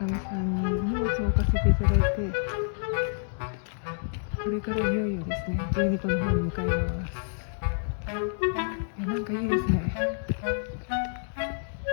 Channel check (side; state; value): right; silent; digital silence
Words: さんに荷物を置かせていただいて、これからいよいよですね、12個の方に向かいます。いや、なんかいいですね。